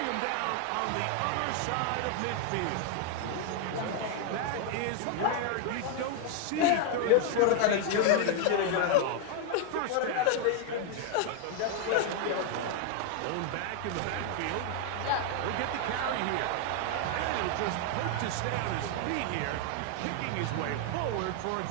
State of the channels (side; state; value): both; different; correlation 0.00